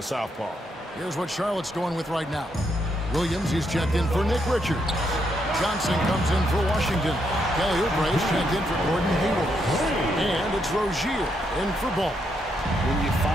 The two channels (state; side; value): normal; both; correlation 0.78